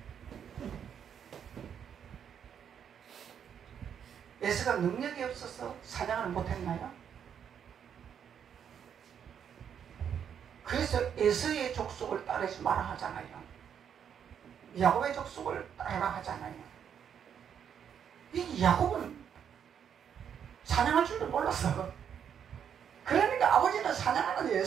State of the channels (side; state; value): left; quieter; 8.2 dB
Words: 에서가 능력이 없어서 사냥을 못했나요? 그래서 에서의 족속을 따르지 마라 하잖아요. 야곱의 족속을 따르라 하잖아요. 이 야곱은 사냥할 줄도 몰랐어. 그러니까 아버지는 사냥하는